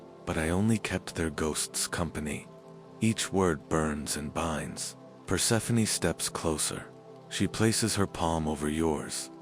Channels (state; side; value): identical; both; correlation 1.00